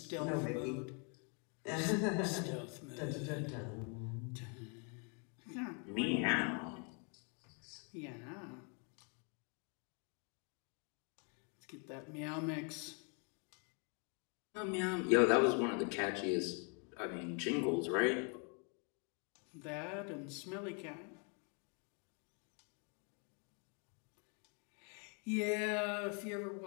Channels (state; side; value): quieter; right; 37.9 dB